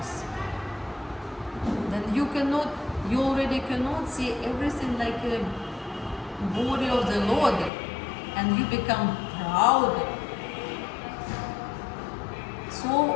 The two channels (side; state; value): right; drops out; at 7.7 s